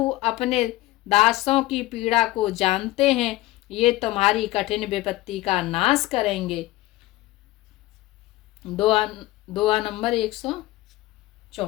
अपने दासों की पीड़ा को जानते हैं, ये तुम्हारी कठिन विपत्ति का नाश करेंगे। दुआ नंबर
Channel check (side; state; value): right; quieter; 17.9 dB